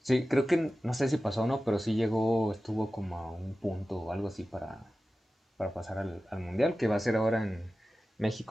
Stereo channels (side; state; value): both; normal; correlation 0.95